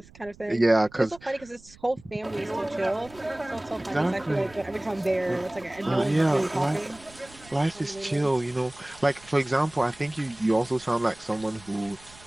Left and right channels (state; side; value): noise; right; rumble, 23 dB below the sound